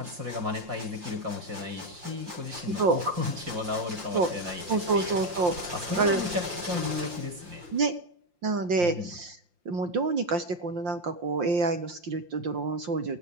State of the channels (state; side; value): late; left; 5.7 ms